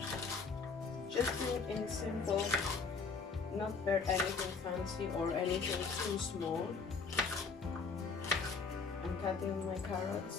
Just in simple, not very anything fancy or anything too small. I'm cutting my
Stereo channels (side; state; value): right; quieter; 4.9 dB